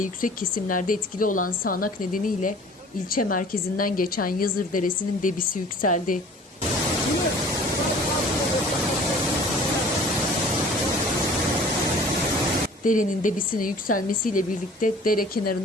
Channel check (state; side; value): normal; both; correlation 0.48